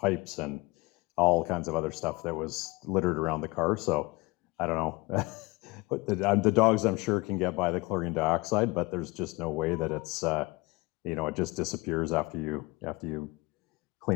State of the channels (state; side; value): quieter; right; 24.5 dB